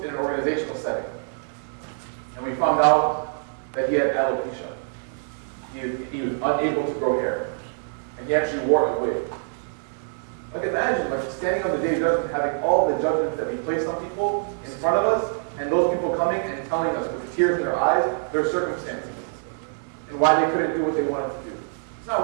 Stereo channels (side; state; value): left; silent; digital silence